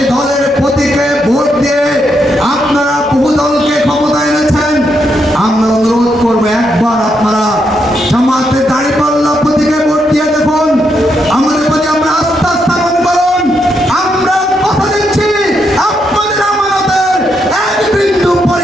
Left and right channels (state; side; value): normal; both; correlation 0.79